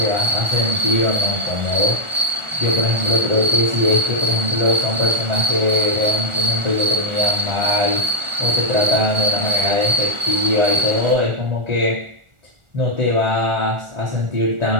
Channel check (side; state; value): left; late; 1.4 ms